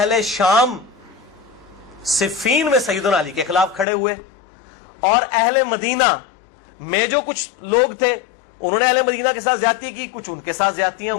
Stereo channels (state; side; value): drops out; right; at 3.9 s